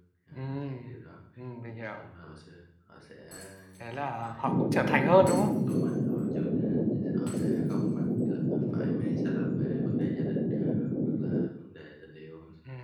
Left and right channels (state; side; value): identical; both; correlation 1.00